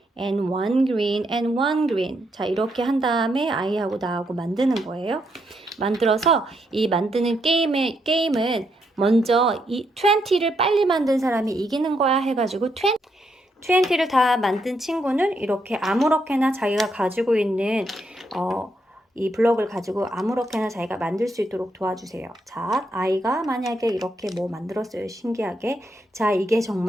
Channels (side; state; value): both; normal; correlation 0.78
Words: and one green and one green. 자, 이렇게 한 다음에 아이하고 나하고 만드는 거예요. 만들어서 이 만드는 게임은 먼저 이 20를 빨리 만든 사람이 이기는 거야 해가지고 20를 다 만든 친구는 이렇게 아무렇게나 자기가 가지고 있는 이 블럭을 가지고 아무렇게나 자기가 만들 수 있도록 도와주세요. 자, 아이가 만약에 이렇게 뭐 만들었어요. 신기하게. 자, 이게